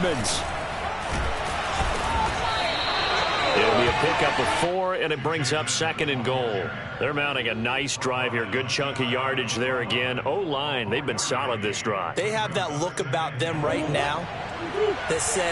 It'll be a pickup of 4, and it brings up 2nd and goal. They're mounting a nice drive here. Good chunk of yardage there again. O-line, they've been solid this drive. They have that look about them right now that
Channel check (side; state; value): both; identical; correlation 1.00